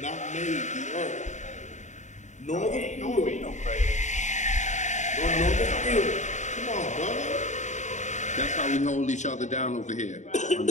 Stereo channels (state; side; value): late; right; 0.34 ms